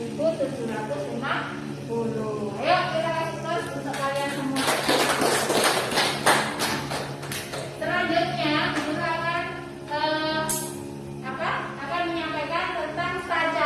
Ayo kita kasih terus untuk kalian semua. Selanjutnya, Guru akan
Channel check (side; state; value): both; identical; correlation 1.00